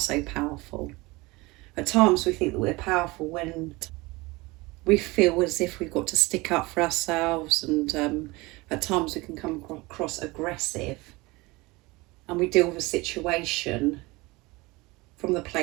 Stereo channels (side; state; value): left; quieter; 23.0 dB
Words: powerful. At times we think that we're powerful when we feel as if we've got to stick up for ourselves, and at times we can come across aggressive, and we deal with a situation from the